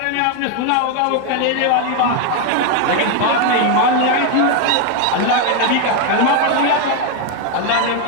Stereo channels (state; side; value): different; both; correlation 0.01